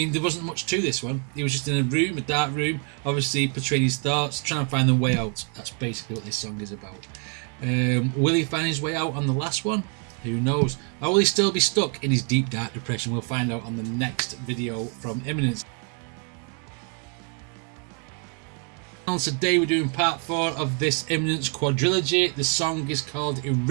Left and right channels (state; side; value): quieter; left; 37.8 dB